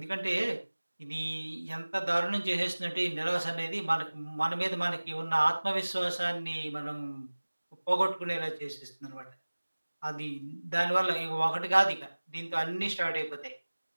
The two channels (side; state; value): both; inverted; correlation -1.00